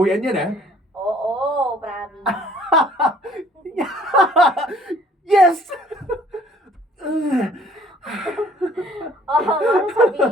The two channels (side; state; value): both; normal; correlation 0.58